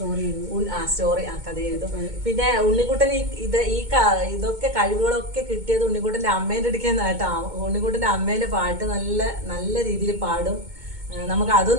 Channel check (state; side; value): late; left; 2.2 ms